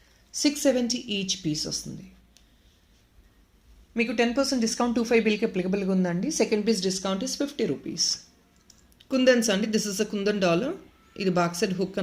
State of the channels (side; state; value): both; identical; correlation 1.00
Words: 670 each piece వస్తుంది. మీకు 10% డిస్కౌంట్ 25 బిల్కి అప్లికబుల్గా ఉందండి. Second piece discount is 50 rupees. Kundans అండి, this is a kundan dollar. ఇది back side hook